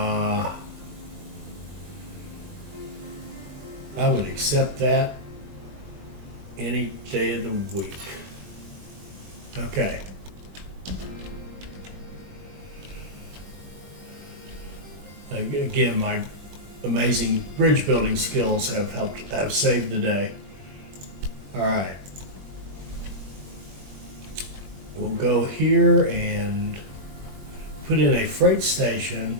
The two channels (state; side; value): late; left; 21 ms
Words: I would accept that any day of the week. Okay. Again, my amazing bridge building skills have saved the day. All right. We'll go here and put in a freight station